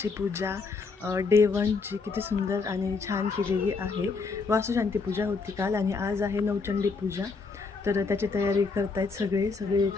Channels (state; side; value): quieter; right; 4.5 dB